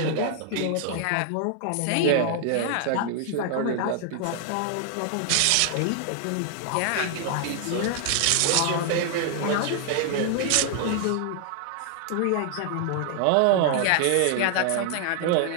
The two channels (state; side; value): different; both; correlation 0.00